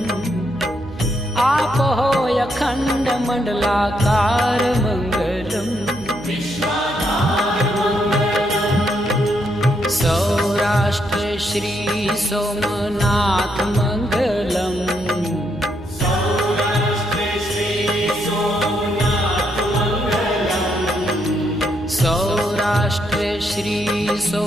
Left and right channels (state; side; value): noise; right; hum, 17 dB below the sound